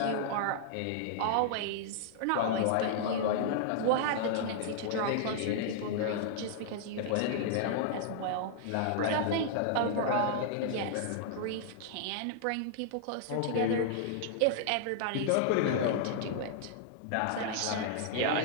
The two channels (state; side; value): different; both; correlation -0.01